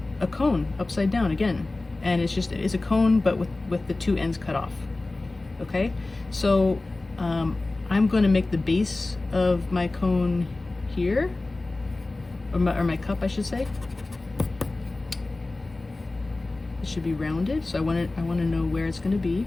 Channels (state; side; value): quieter; right; 3.1 dB